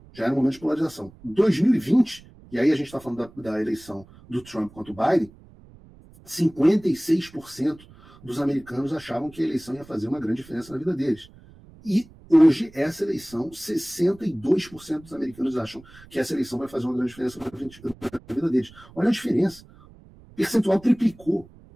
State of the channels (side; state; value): right; noise; rumble, 23 dB below the sound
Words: já era um momento de polarização. 2020, e aí a gente está falando da eleição do Trump contra o Biden, 56% dos americanos achavam que a eleição ia fazer uma grande diferença na vida deles. E hoje, essa eleição, 62% dos americanos acham que essa eleição vai fazer uma grande diferença na vida deles. Olha a diferença. O percentual triplicou.